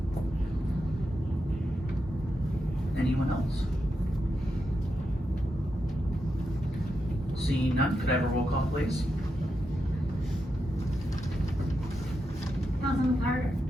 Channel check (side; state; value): both; normal; correlation 0.86